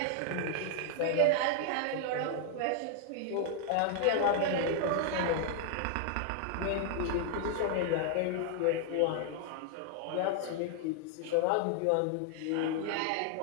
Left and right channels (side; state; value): both; different; correlation 0.00